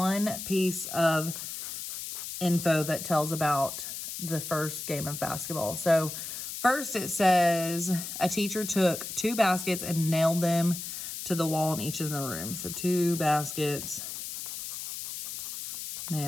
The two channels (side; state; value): left; noise; hiss, 7 dB below the sound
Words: piece of info that tells about the first game of basketball. So first it says a teacher took 2 baskets and nailed them to the wall in each of the rooms. So 2 baskets